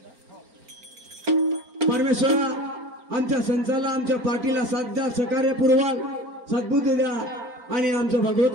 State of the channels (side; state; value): left; late; 4.4 ms